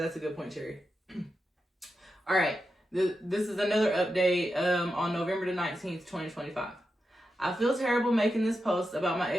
a good point, Cherry. All right, this is another update on November the 19th, 2025. I feel terrible making this post about my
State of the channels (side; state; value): both; normal; correlation 0.89